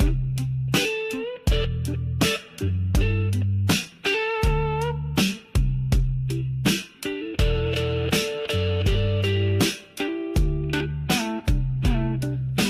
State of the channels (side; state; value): both; identical; correlation 1.00